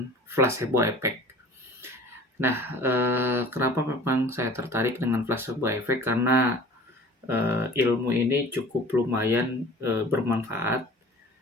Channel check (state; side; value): normal; both; correlation 0.44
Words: placebo effect. Nah, kenapa memang saya tertarik dengan placebo effect, karena, ilmu ini cukup lumayan, bermanfaat,